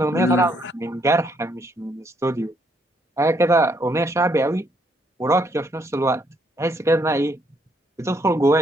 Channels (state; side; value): normal; both; correlation 0.72